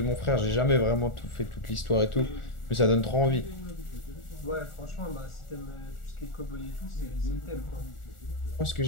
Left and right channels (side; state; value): right; late; 1.4 ms